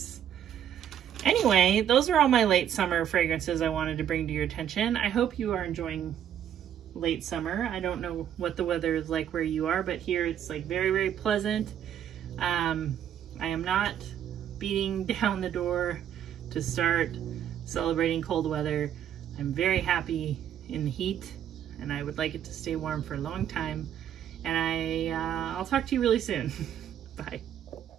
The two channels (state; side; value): quieter; left; 9.9 dB